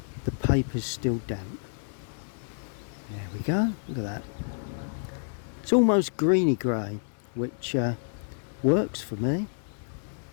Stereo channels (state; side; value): silent; right; 59 dB below the other